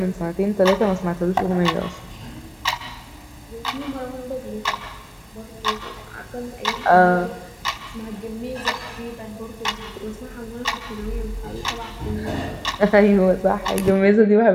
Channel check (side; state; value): both; identical; correlation 1.00